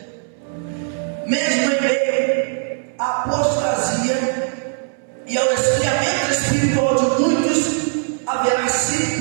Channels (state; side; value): silent; left; 64 dB below the other